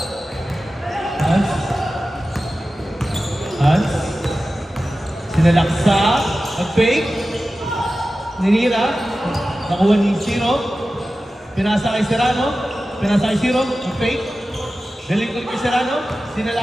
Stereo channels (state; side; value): normal; both; correlation 0.94